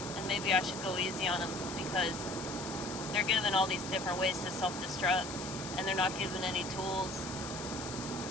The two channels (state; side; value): noise; left; hiss, 10 dB below the sound